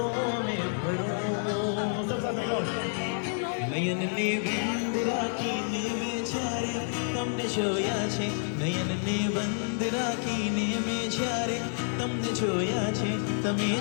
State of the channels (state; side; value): silent; right; 55 dB below the other